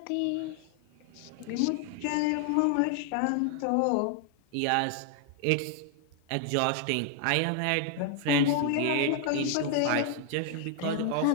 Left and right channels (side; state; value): both; different; correlation 0.00